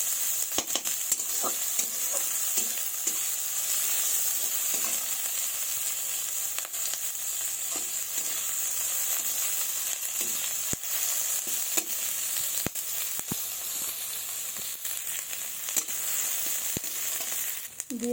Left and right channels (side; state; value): both; identical; correlation 1.00